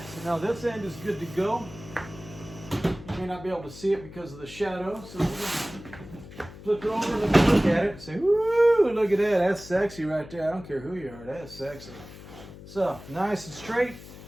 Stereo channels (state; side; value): noise; left; hum, 16 dB below the sound